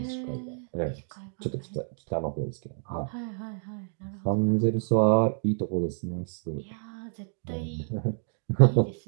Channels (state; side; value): silent; left; digital silence